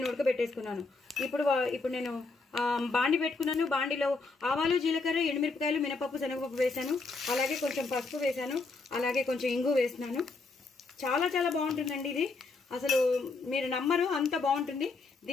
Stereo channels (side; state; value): right; quieter; 3.9 dB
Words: ఉడకబెట్టేసుకున్నాను. ఇప్పుడు నేను బాండి పెట్టుకున్నాను. బాండిలో ఆవాలు, జీలకర్ర, ఎండుమిరపకాయలు, మినపప్పు, శనగపప్పు వేసాను. అలాగే కొంచెం పసుపు వేసాను. అలాగే కొంచెం ఇంగు వేసినాను. చాలా చాలా బాగుంటుందండి ఇది. అసలు మీరు నమ్మరు, అంత బాగుంటుంది.